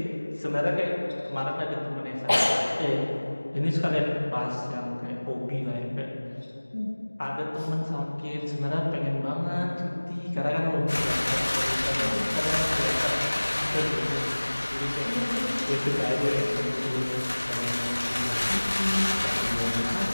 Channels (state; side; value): inverted; both; correlation -1.00